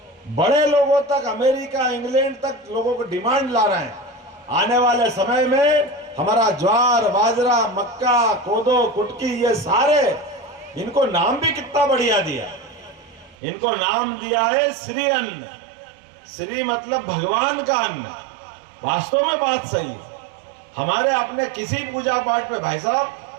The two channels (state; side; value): drops out; left; at 13.4 s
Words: बड़े लोगों तक, अमेरिका, इंग्लैंड तक लोगों को डिमांड ला रहे हैं। आने वाले समय में हमारा ज्वार, बाजरा, मक्का, कोदो, कुटकी, ये सारे, इनको नाम भी कितना बढ़िया दिया। इनको नाम दिया है श्री अन्न। श्री मतलब भगवान का अन्न। वास्तव में बात सही है। हमारे अपने किसी पूजा पाठ पे, भाई साहब,